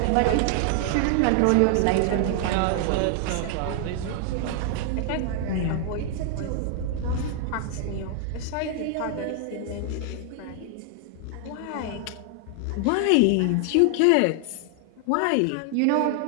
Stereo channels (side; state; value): both; different; correlation 0.00